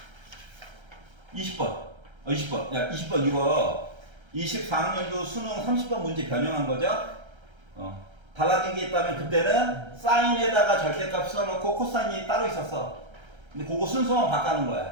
20번 20번 야 20번 이거 24학년도 수능 30번 문제 변형한 거죠? 달라진 게 있다면 그때는 사인에다가 절대값 써놓고 코사인이 따로 있었어. 근데 그거 순서만 바꾸는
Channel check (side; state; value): left; late; 1.3 ms